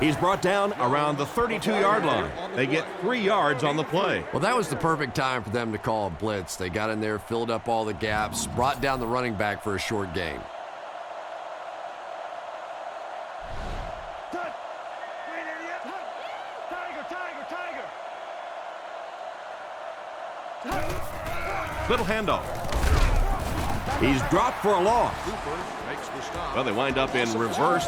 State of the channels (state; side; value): identical; both; correlation 1.00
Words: brought down around the 32-yard line. They get 3 yards on the play. Well, that was the perfect time for them to call a blitz. They got in there, filled up all the gaps, brought down the running back for a short gain. Little handoff. He's dropped for a loss. Well, they wind up in reverse